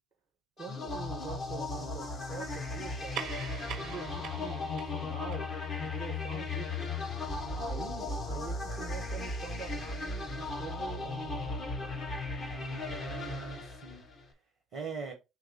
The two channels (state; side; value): normal; both; correlation 0.56